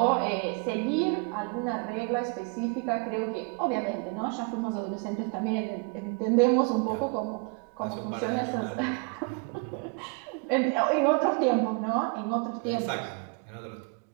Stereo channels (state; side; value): quieter; left; 32.4 dB